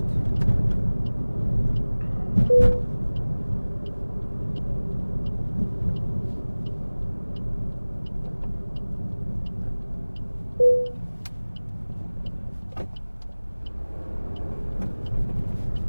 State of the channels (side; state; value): both; inverted; correlation -1.00